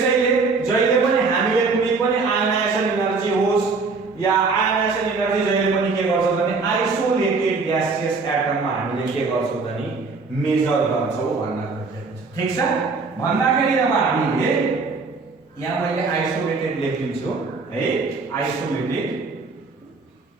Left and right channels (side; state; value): left; quieter; 4.3 dB